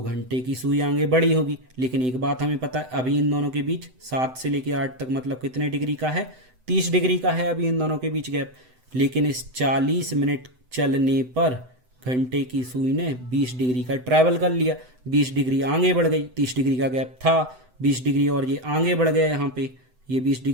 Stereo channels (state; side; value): late; left; 7.9 ms